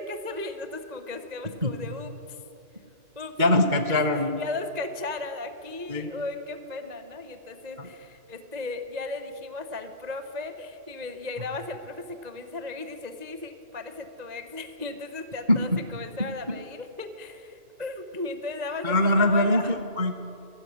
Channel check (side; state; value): left; late; 2.2 ms